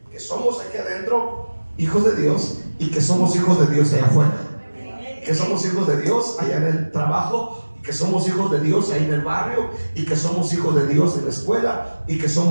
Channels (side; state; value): both; inverted; correlation -1.00